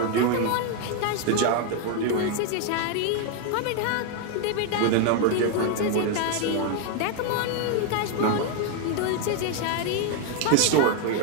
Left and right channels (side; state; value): both; different; correlation 0.01